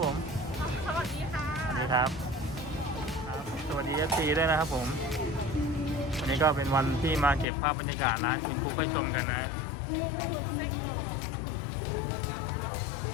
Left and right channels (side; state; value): right; drops out; at 7.5 s